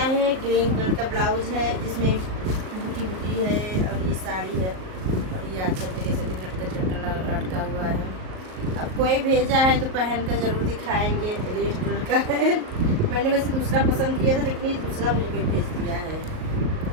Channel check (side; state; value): left; late; 38 ms